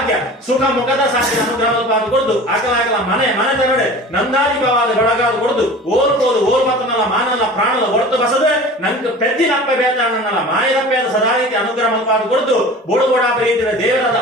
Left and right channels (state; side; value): normal; both; correlation 0.39